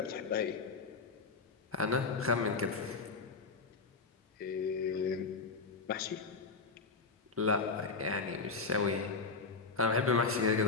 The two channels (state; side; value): quieter; right; 4.3 dB